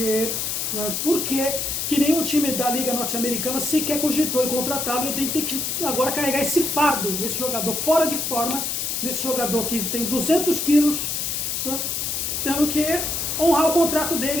nenhum time da Liga Norte-Americana sequer cogitou em contratá-lo, e tem que agora carregar esse fardo desse jogador fora de forma, desse jogador que tem 200 quilos, né, tendo que honrar o contrato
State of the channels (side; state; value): left; noise; hiss, 1 dB below the sound